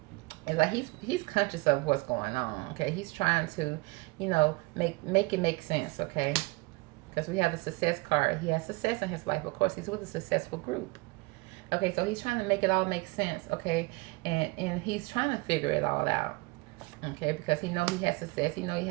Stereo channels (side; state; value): left; quieter; 25.1 dB